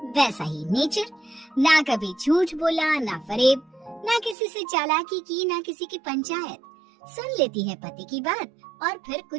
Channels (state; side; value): drops out; left; at 4.4 s